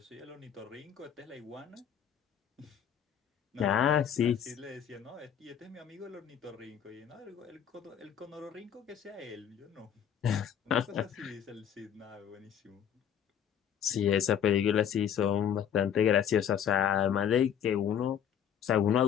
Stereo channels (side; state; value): right; quieter; 8.9 dB